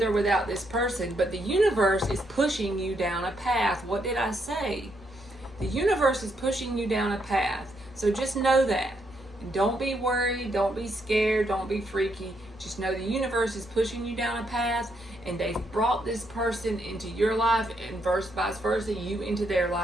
or without this person, but the universe is pushing you down a path. What did I say? The universe is pushing you down a path. So just know that. Don't be worried. Don't be scared. Don't be freaky. Just know the universe is pushing you down a path, and they've brought this person into your life and vice versa, you into their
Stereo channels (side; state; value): both; normal; correlation 0.76